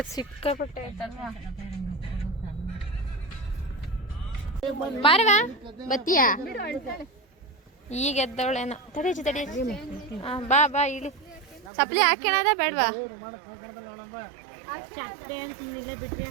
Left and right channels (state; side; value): drops out; left; at 11.7 s